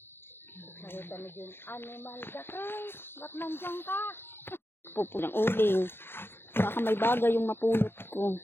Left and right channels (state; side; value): late; right; 0.11 ms